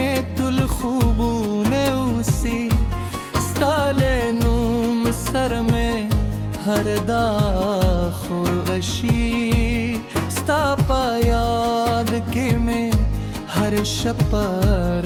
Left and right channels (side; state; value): both; identical; correlation 1.00